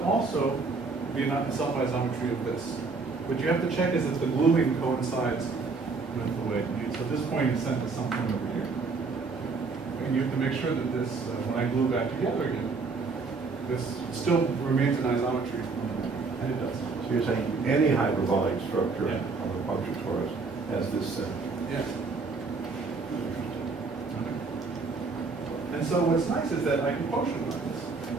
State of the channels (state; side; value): quieter; left; 4.3 dB